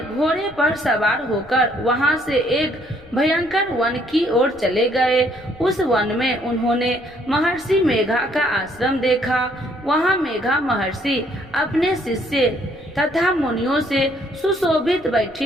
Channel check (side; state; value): left; noise; rumble, 26 dB below the sound